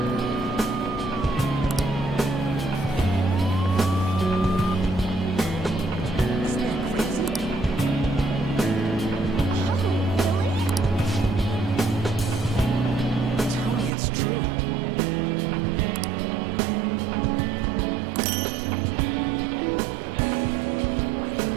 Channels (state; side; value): drops out; left; at 13.9 s